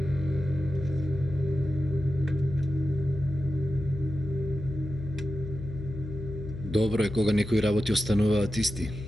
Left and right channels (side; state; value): left; noise; hum, 9 dB below the sound